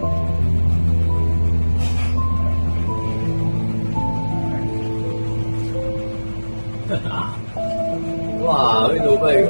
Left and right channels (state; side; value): inverted; both; correlation -1.00